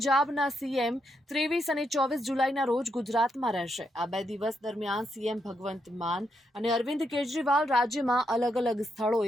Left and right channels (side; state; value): both; normal; correlation 0.80